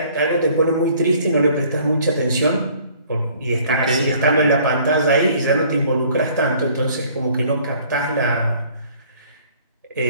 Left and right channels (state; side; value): inverted; both; correlation -0.56